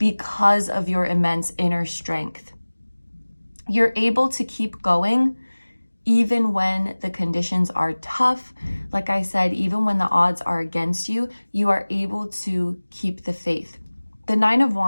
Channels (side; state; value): both; inverted; correlation -1.00